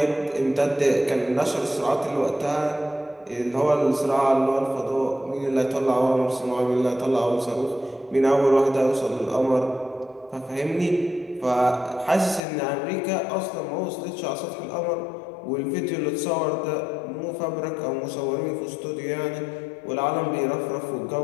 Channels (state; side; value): drops out; right; at 12.4 s